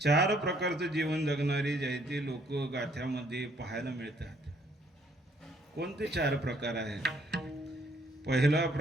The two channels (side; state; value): both; normal; correlation 0.65